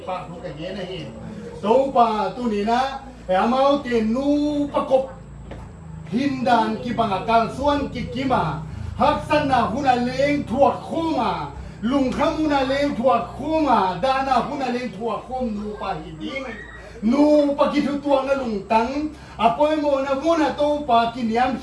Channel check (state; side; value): identical; both; correlation 1.00